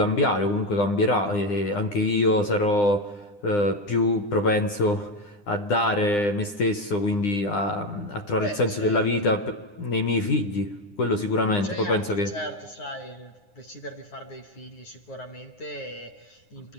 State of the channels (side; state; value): right; late; 9.8 ms